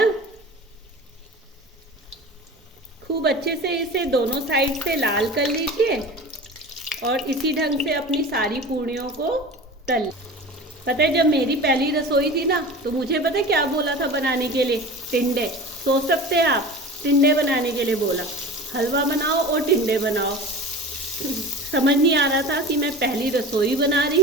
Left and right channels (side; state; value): both; normal; correlation 0.35